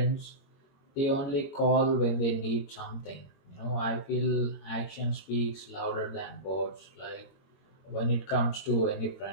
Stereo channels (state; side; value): late; right; 21 ms